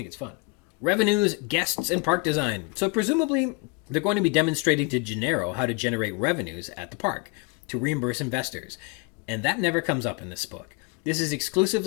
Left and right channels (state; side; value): quieter; right; 28.8 dB